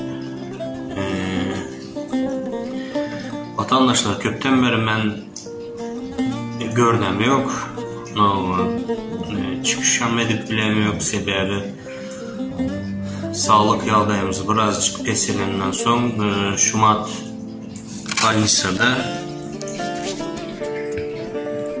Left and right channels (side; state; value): both; identical; correlation 1.00